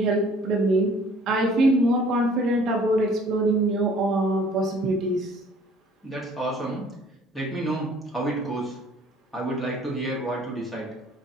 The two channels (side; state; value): both; normal; correlation 0.55